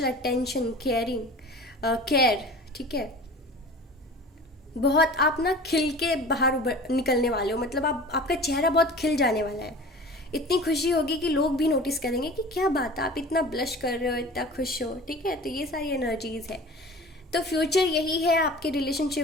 अटेंशन, केयर, ठीक है। बहुत आप ना खिल के बाहर निकलने वाले हो, मतलब आपका चेहरा बहुत खिल जाने वाला है, इतनी खुशी होगी कि लोग भी नोटिस करेंगे कि क्या बात है, आप इतना ब्लश कर रहे हो, इतना खुश हो, ठीक है। तो ये सारी एनर्जीज है, तो फ्यूचर यही है आपके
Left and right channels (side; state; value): both; normal; correlation 0.40